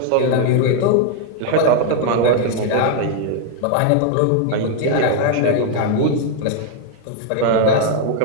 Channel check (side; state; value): both; different; correlation 0.00